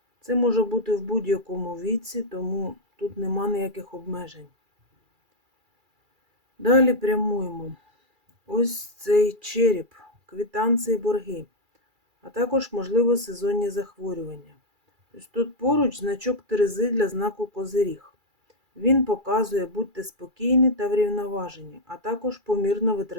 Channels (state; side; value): late; left; 2.3 ms